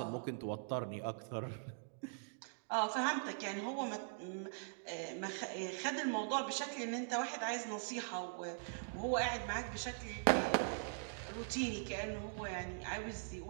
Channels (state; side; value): silent; left; digital silence